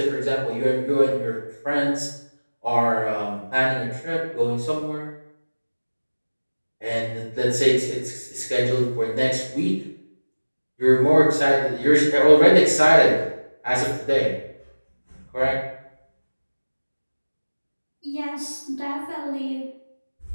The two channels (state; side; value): inverted; both; correlation -1.00